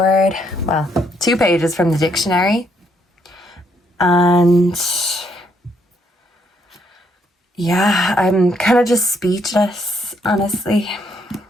well, 2 pages from the dictionary. And yeah, I'm kind of just speechless, honestly.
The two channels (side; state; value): both; normal; correlation 0.72